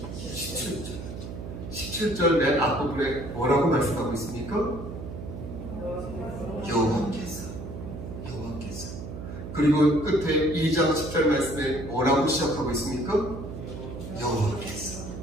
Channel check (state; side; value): noise; right; hum, 9 dB below the sound